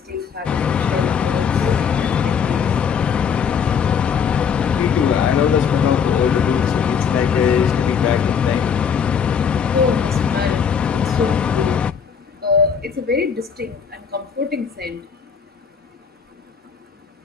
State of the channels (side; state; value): right; quieter; 6.8 dB